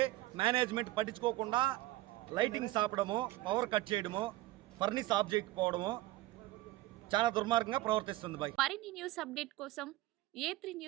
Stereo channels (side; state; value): left; quieter; 17.6 dB